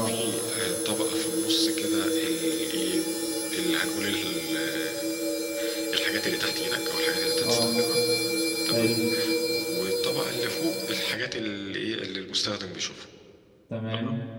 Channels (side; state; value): both; identical; correlation 1.00